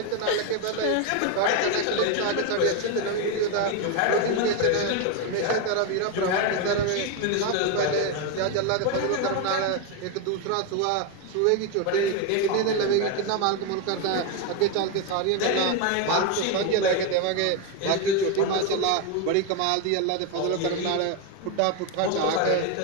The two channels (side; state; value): both; different; correlation 0.02